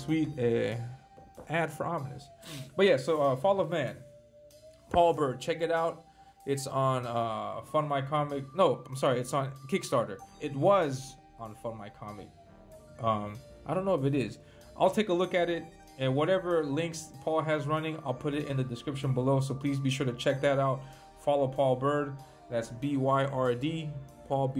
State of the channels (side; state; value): both; identical; correlation 1.00